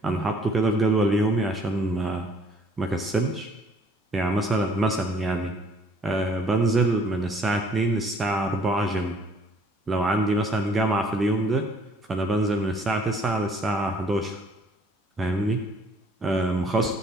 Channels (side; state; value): both; normal; correlation 0.59